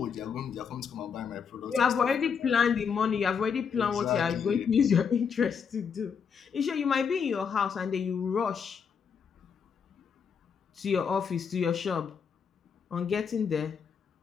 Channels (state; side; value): quieter; right; 6.6 dB